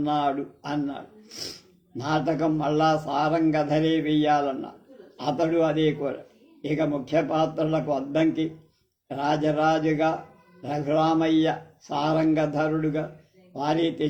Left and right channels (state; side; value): identical; both; correlation 1.00